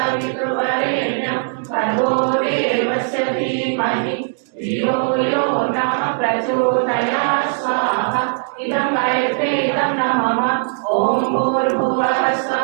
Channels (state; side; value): silent; left; 67 dB below the other